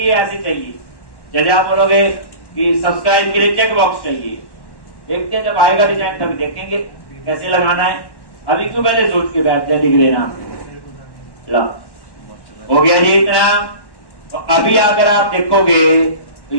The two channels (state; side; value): late; right; 1.1 ms